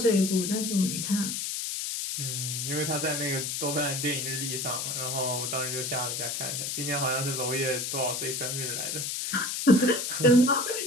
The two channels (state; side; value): noise; left; hiss, 2 dB below the sound